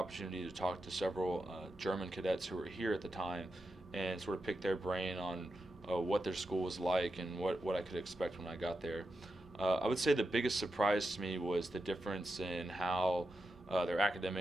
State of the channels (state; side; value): normal; both; correlation 0.89